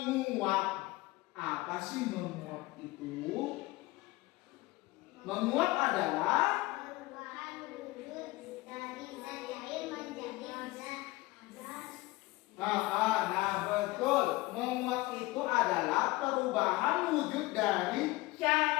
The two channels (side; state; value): right; quieter; 20.7 dB